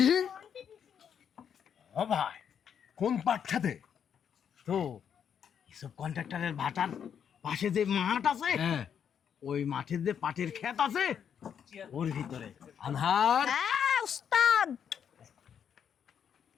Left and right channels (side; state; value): right; quieter; 8.1 dB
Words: ও ভাই, কোন পাট খেতে? তো এসব কন্ট্রাক্টরের ভাটার পাশে যে মাঠ আছে, হ্যাঁ, ওই মাঠের যে পাটের ক্ষেত আছে ওর ভিতরে। আনহার হ্যাঁ ওস্তাদ,